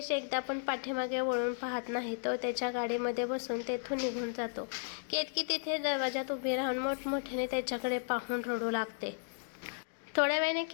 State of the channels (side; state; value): right; silent; digital silence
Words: एकदा पण पाठीमागे वळून पाहत नाही. तो त्याच्या गाडीमध्ये बसून तेथून निघून जातो. केतकी तिथे दरवाजात उभी राहून मोठमोठ्याने त्याच्याकडे पाहून रडू लागते. थोड्या वेळाने